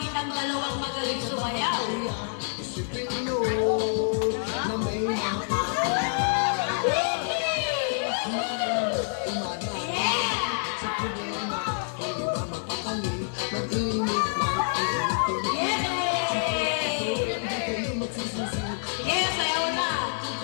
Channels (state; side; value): silent; right; digital silence